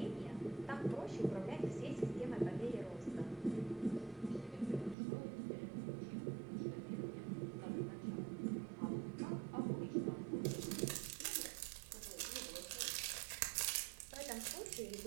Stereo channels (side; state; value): left; drops out; at 5.0 s